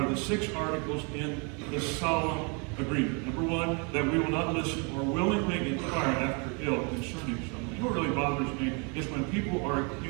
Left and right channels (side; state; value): left; quieter; 33.1 dB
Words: the 6 articles in the solemn agreement. Number 1, that we will not listen or willingly inquire after ill concerning someone. You know what really bothers me is when people are